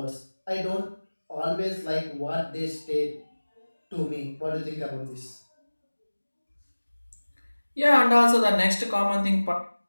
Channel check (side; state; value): both; inverted; correlation -1.00